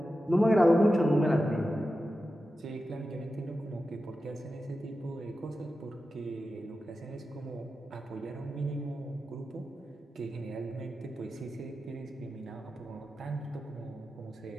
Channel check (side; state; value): both; normal; correlation 0.92